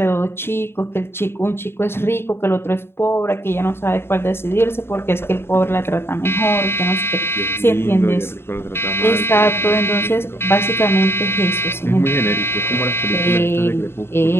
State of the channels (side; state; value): right; late; 0.11 ms